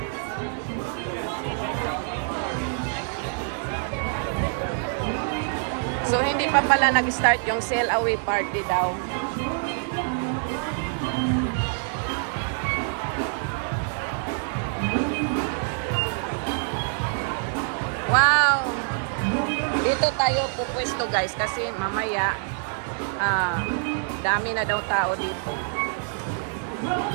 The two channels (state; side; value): silent; left; 56 dB below the other